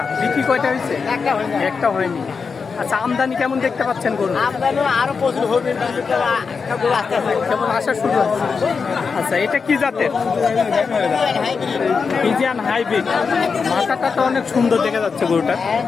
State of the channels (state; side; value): quieter; right; 5.3 dB